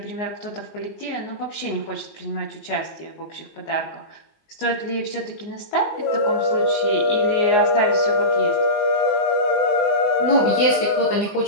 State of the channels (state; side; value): late; right; 19 ms